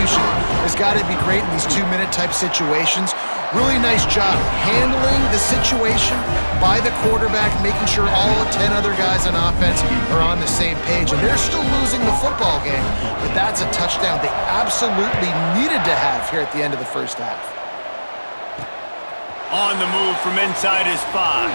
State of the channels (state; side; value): inverted; both; correlation -1.00